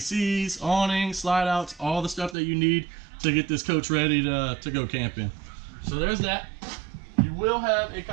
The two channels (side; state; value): left; drops out; at 2.4 s